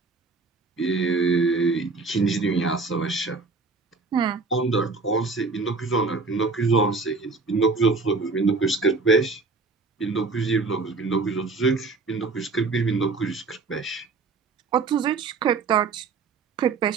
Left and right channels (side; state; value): left; quieter; 4.2 dB